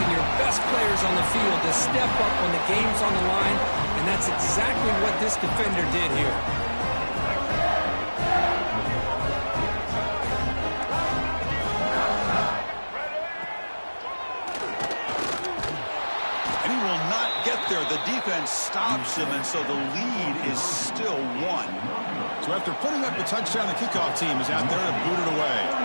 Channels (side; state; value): both; inverted; correlation -1.00